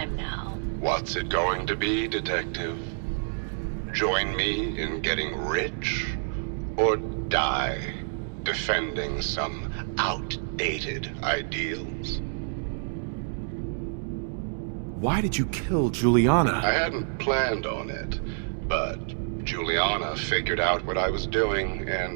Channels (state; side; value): silent; left; digital silence